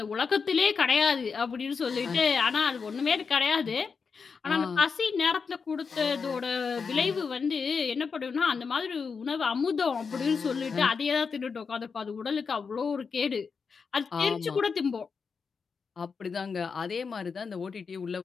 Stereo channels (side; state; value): right; quieter; 5.5 dB